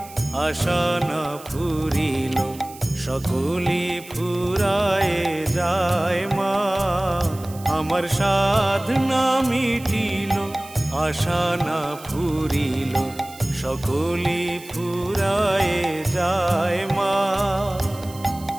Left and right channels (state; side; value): noise; right; hiss, 19 dB below the sound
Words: আশা না ফুরিল, সকলি ফুরায়ে যায় মা। আমার সাধ না মিটিল, আশা না ফুরিল, সকলি ফুরায়ে যায় মা।